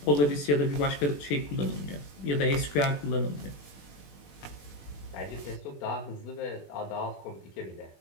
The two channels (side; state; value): right; late; 21 ms